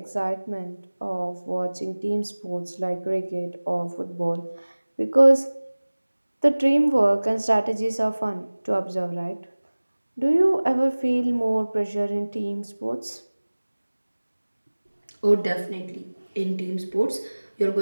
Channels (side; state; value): both; inverted; correlation -1.00